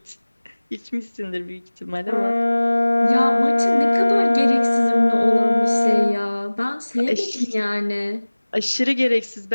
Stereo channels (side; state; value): both; inverted; correlation -1.00